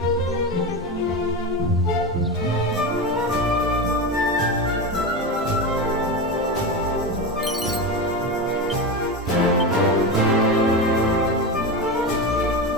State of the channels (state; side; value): normal; both; correlation 0.20